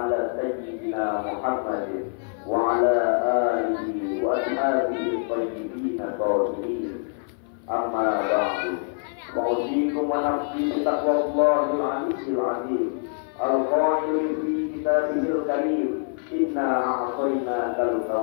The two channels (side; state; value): right; silent; 56 dB below the other